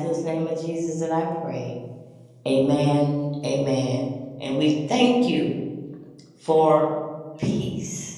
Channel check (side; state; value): both; identical; correlation 1.00